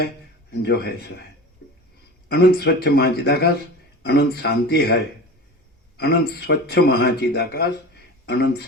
जो है सो है। अनंत स्वच्छ महाचिदाकाश, अनंत शांति है। अनंत स्वच्छ महाचिदाकाश, अनंत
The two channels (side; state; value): both; normal; correlation 0.33